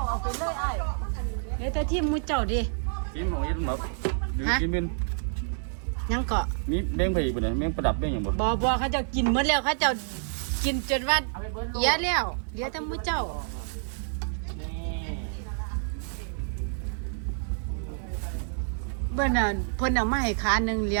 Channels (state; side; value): silent; left; 59 dB below the other